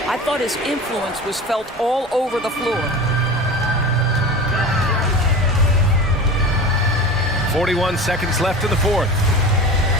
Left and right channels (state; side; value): normal; both; correlation 0.33